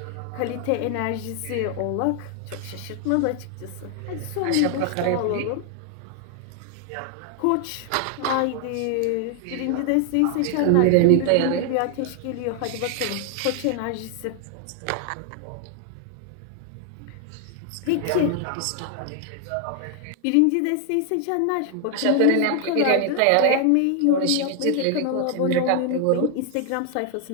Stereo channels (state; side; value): different; both; correlation 0.00